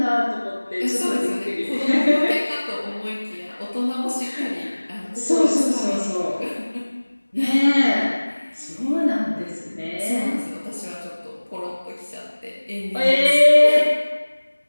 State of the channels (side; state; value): both; inverted; correlation -1.00